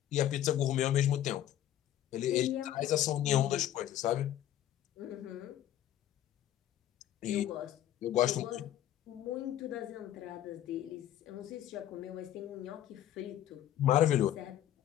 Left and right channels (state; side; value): quieter; right; 12.0 dB